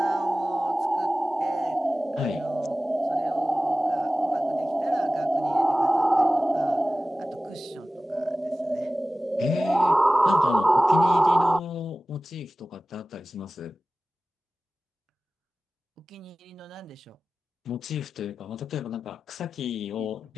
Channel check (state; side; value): normal; both; correlation 0.96